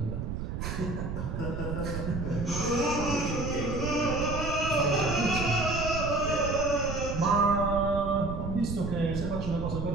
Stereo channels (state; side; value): noise; right; rumble, 4 dB below the sound